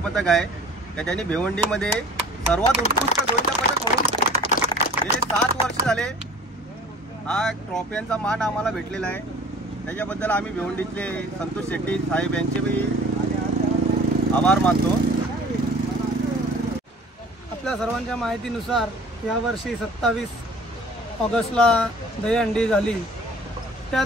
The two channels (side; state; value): both; normal; correlation 0.47